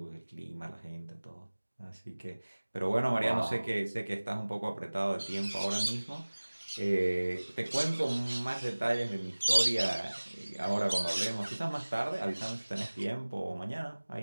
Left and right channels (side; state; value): both; inverted; correlation -1.00